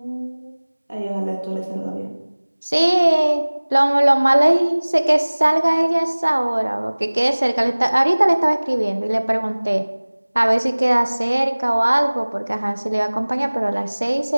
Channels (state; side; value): inverted; both; correlation -1.00